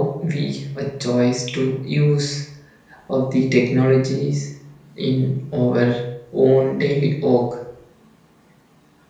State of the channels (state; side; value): identical; both; correlation 1.00